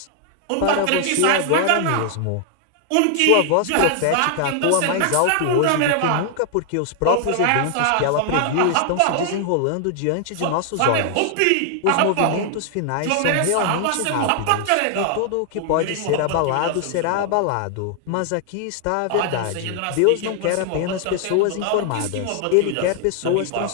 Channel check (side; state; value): both; different; correlation 0.00